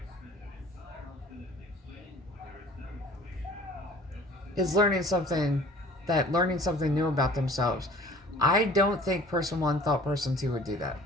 is learning something new about themselves. I don't think person one thought person two would do that.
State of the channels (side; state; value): both; normal; correlation 0.49